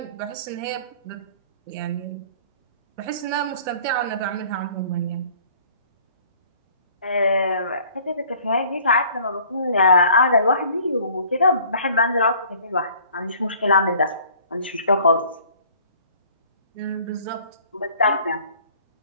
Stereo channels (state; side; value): inverted; both; correlation -0.54